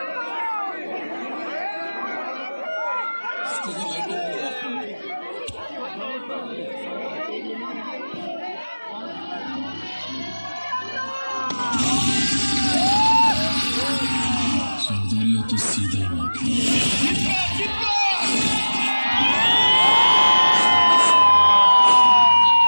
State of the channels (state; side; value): inverted; both; correlation -1.00